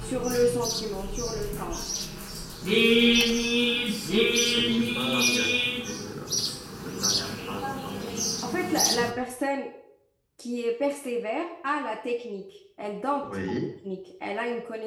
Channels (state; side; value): identical; both; correlation 1.00